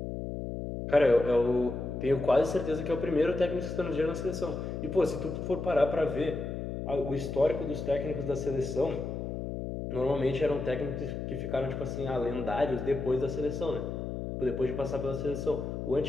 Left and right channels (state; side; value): noise; left; hum, 5 dB below the sound